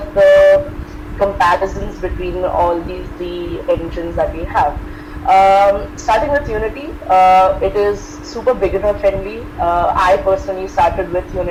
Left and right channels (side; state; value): both; identical; correlation 1.00